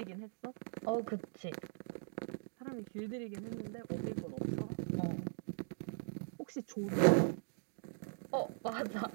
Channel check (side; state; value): left; silent; digital silence